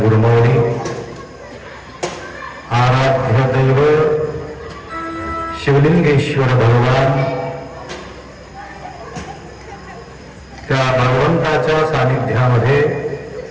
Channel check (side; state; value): both; identical; correlation 1.00